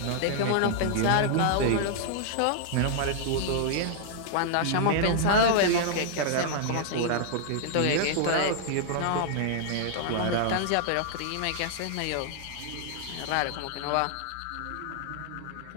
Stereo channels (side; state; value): both; different; correlation -0.01